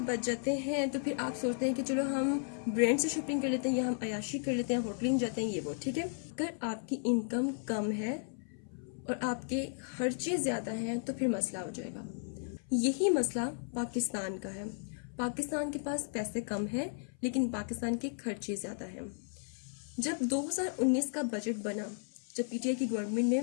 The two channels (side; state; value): right; silent; 55 dB below the other